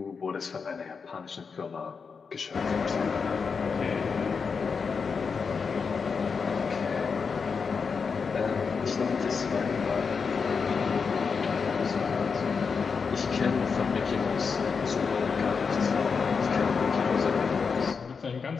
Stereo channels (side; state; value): right; quieter; 5.5 dB